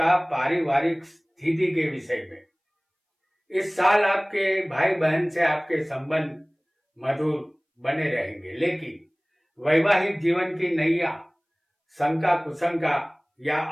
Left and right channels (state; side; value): identical; both; correlation 1.00